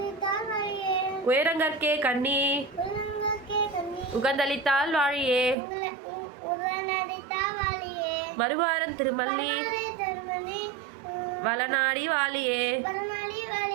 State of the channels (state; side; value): drops out; left; at 5.6 s